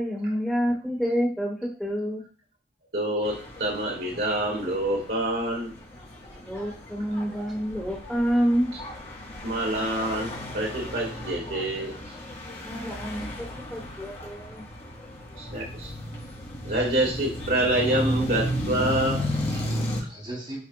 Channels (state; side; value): normal; both; correlation 0.54